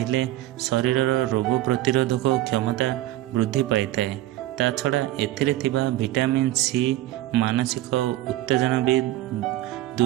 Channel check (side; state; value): left; quieter; 15.4 dB